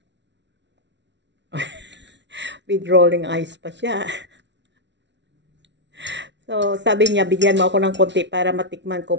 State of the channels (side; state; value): left; late; 0.51 ms